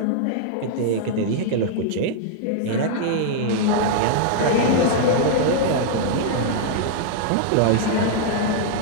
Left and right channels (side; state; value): both; different; correlation -0.01